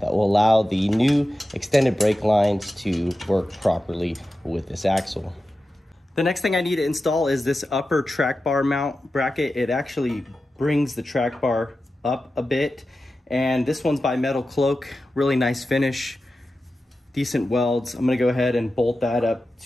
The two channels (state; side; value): normal; both; correlation 0.93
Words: will allow the new extended brake lines to work properly with this axle. The next thing I need to install is this upper track bar mount bracket. It actually brings the track bar up a bit, and this one's by Metal Cloak. Really nice finish, decent welds. I'm gonna go ahead and bolt that up